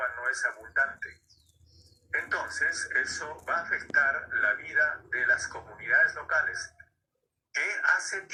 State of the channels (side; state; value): both; identical; correlation 1.00